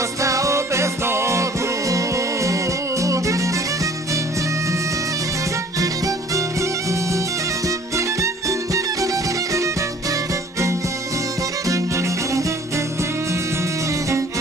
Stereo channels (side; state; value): both; normal; correlation 0.52